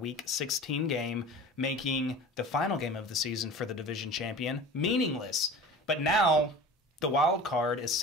16 game, making the final game of the season for the division champion meaningless. But now the wild card is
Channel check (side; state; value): both; normal; correlation 0.38